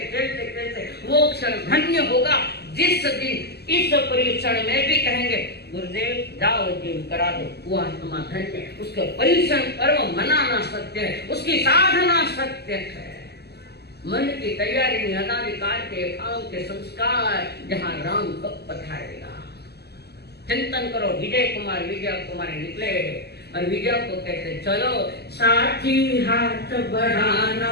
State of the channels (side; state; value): right; late; 0.47 ms